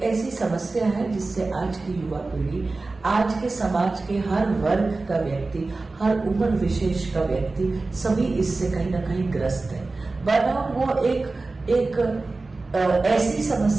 ऐसी समस्या है जिससे आज की युवा पीढ़ी, आज के समाज के हर वर्ग का व्यक्ति, हर उम्र विशेष का व्यक्ति सभी इससे कहीं ना कहीं ग्रस्त है। बर्नआउट वो एक ऐसी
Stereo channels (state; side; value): quieter; left; 3.5 dB